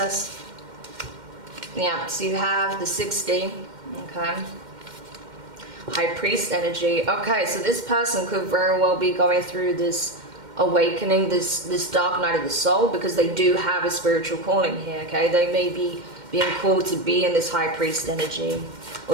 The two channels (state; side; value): late; left; 2.1 ms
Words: Yeah, so you have the 60, okay. High Priest energy. Okay, so this person could very well be going through this awakening, this dark night of the soul, because they do have a spiritual calling here, okay? They may be being called to be in this High Priest energy,